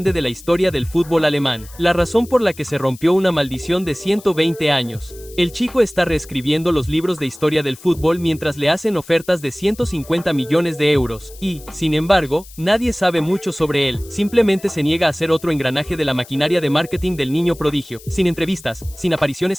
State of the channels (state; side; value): noise; left; hiss, 20 dB below the sound